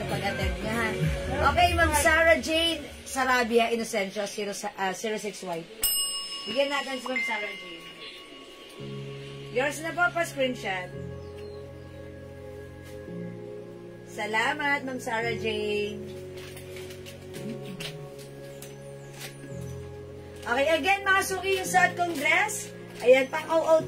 pag-attend nyo ha. Okay, Ma'am Sarah Jane Sarabia Inocencio, 06 white. Bigyan natin si Ma'am Sarah Jane. Yours na po pa-screenshot. Salamat, Ma'am Sarah Jane. Okay, again, mga suki, yung suot kong dress. Ayan, pang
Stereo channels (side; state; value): both; identical; correlation 1.00